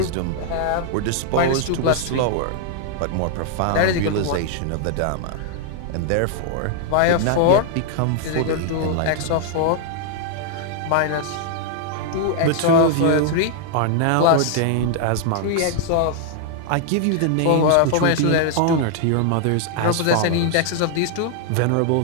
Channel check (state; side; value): different; both; correlation 0.00